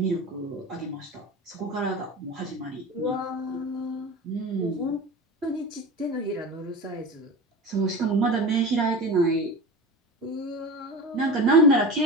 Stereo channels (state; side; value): normal; both; correlation 0.30